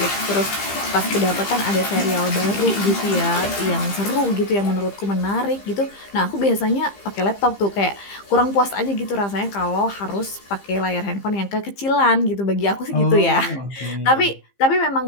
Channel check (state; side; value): late; right; 15 ms